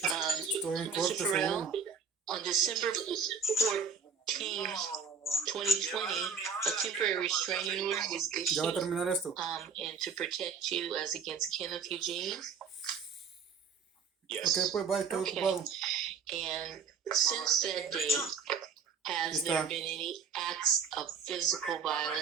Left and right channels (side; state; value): left; quieter; 5.9 dB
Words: Farrell, on December 14th, 2020, a temporary restraining order was Ya va a issued terminar esto. and to protect you as against Kenneth Eugene. Yes. Ok, pues bye, estoy ocupado. And since that date, has there been any acts of physical